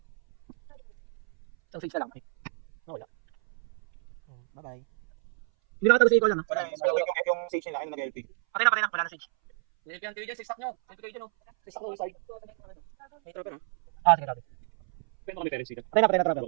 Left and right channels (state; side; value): silent; left; 58 dB below the other